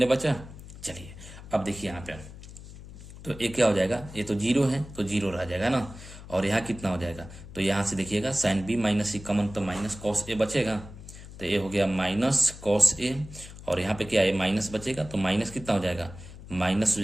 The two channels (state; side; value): noise; left; hum, 15 dB below the sound